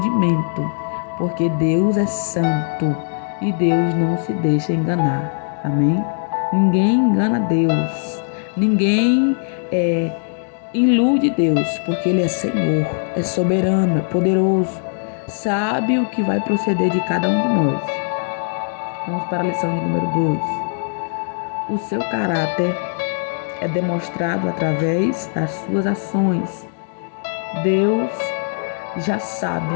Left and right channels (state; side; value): silent; right; digital silence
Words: porque Deus é santo e Deus não se deixa enganar. Amém? Ninguém engana Deus. Ninguém ilude Deus, porque Ele é Senhor, é soberano, é poderoso. Sabe o que vai proceder de cada um de nós. Vamos para a lição de número 2. O seu caráter é demonstrado através das suas ações. Deus já